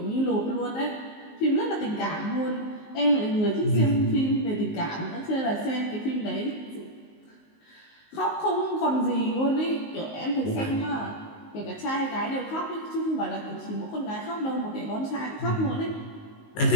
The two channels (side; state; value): right; late; 19 ms